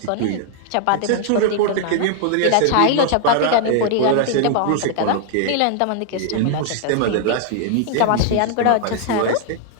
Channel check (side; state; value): both; different; correlation -0.01